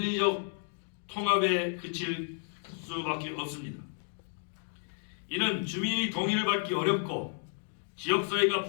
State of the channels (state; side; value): silent; right; 56 dB below the other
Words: 통합에 그칠 수밖에 없습니다. 이는 주민의 동의를 받기 어렵고 지역사회가